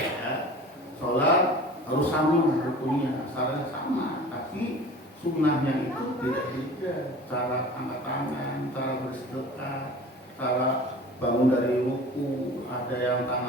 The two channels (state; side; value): normal; both; correlation 0.41